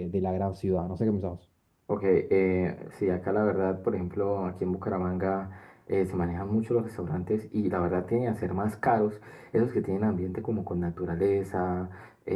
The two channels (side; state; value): both; identical; correlation 1.00